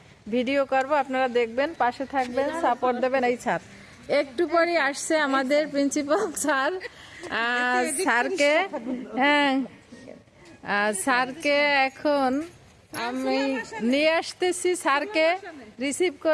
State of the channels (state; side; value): identical; both; correlation 1.00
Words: ভিডিও করব, আপনারা দেখবেন, পাশে থাকবেন, সাপোর্ট দেবেন। এই স্যার একটু পরে আসছে আমাদের প্রিন্সিপাল স্যার। স্যারকে স্যারকে এখন আমি নিয়ে আসতেছি, স্যারকে রিসিভ